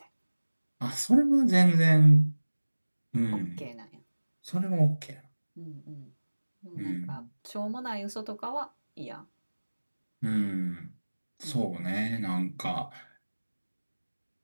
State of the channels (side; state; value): both; inverted; correlation -1.00